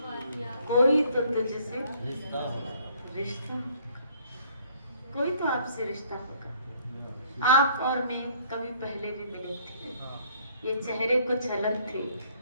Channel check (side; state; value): both; inverted; correlation -0.61